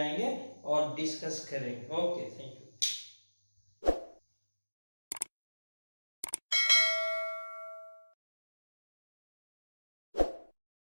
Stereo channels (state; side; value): inverted; both; correlation -1.00